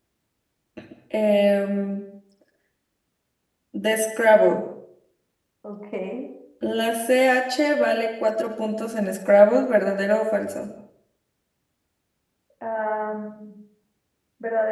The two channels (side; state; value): both; identical; correlation 1.00